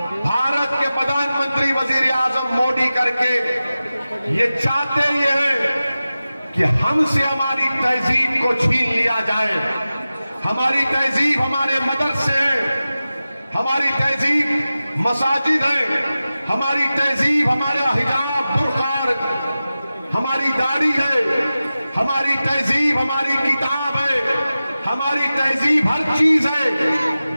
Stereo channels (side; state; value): both; inverted; correlation -0.95